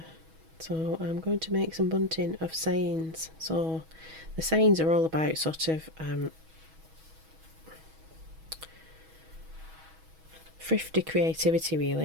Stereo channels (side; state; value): left; late; 6.2 ms